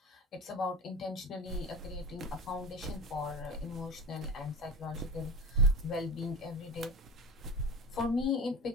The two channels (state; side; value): normal; both; correlation 0.31